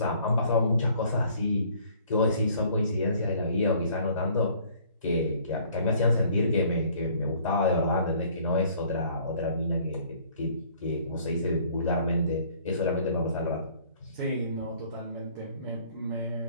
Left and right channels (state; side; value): inverted; both; correlation -0.57